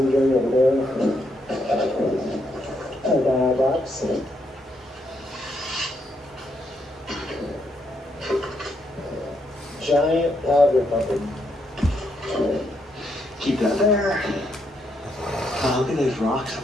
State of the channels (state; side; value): normal; both; correlation 0.77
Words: area over there. A box. Giant powder pumpkin. Keep that there. Oh, look at those rocks